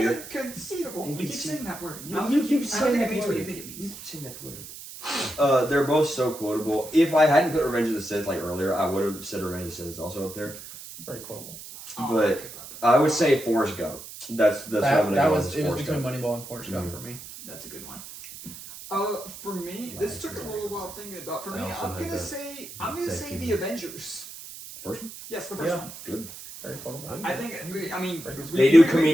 Conceivable. You keep saying that word. You keep saying that means word. what you think it means. saying that word. They're both so quotable. If I hadn't put Revenge of the Sith like earlier, I would have said Revenge of the Sith is also up there. Very quotable. But I would say Forrest Gump. That's what I'm gonna That go was with. it was Forrest between Gump. Moneyball and Forrest Gump for me. That's a good one. For me, this took a little while thinking about. For me, I'm gonna say The Avengers. The first one? Yes, the first one. Good. Very quotable. I think. They do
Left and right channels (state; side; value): noise; right; hiss, 13 dB below the sound